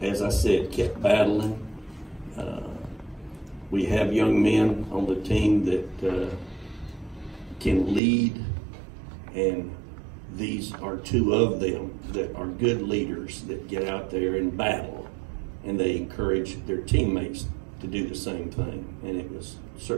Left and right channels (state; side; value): drops out; left; at 8.0 s